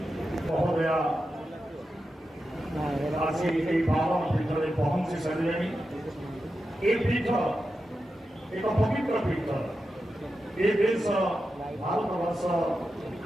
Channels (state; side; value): normal; both; correlation 0.90